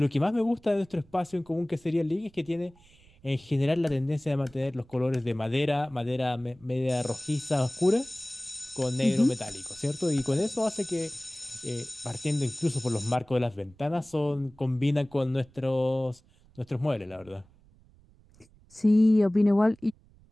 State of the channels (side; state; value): right; noise; rumble, 28 dB below the sound